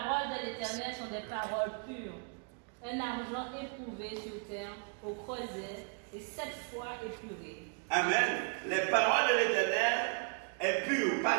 de l'Éternel sont des paroles pures, un argent éprouvé sur terre, au creuset, et 7 fois épuré. Amen. Les paroles de l'Éternel est pure,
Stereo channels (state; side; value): quieter; left; 38.9 dB